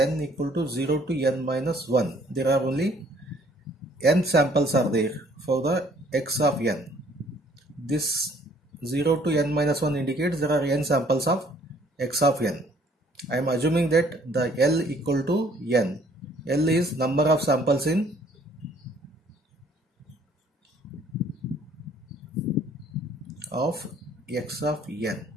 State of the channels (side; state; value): both; normal; correlation 0.60